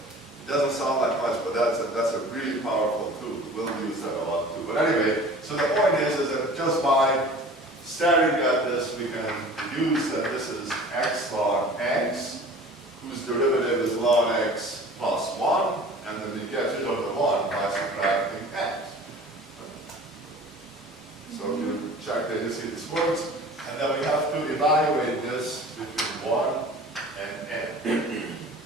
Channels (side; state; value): both; normal; correlation 0.43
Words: doesn't sound like much, but that's a really powerful tool. We'll use that a lot too. But anyway, so the point is that just by staring at this, we can deduce that this is x log x, whose derivative is log x plus 1, and then we get rid of the 1 by subtracting x. So if you check that, you see this works, and then we have to evaluate this between 1 and n.